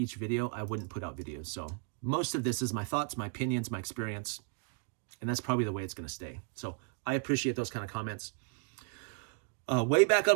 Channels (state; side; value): quieter; left; 39.9 dB